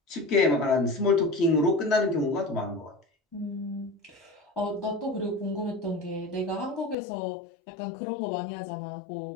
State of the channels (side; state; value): right; drops out; at 7.0 s